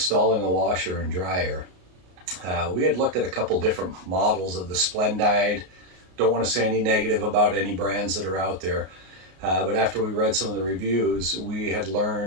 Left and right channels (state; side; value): late; left; 33 ms